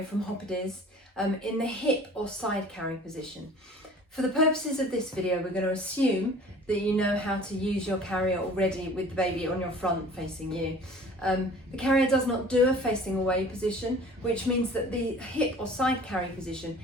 from Hoppediz in the hip or side carry position. For the purposes of this video, we're going to assume that you know how to use your carrier already with the baby on your front facing you. The carrier does not do a facing away position, which means that the hip or side carry position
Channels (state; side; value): normal; both; correlation 0.47